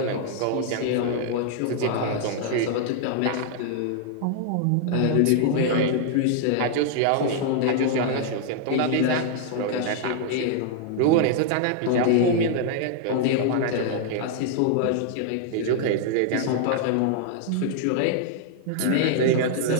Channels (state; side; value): different; both; correlation 0.00